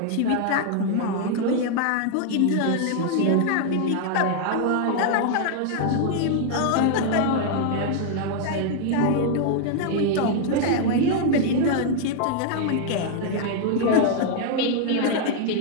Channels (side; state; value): both; different; correlation 0.00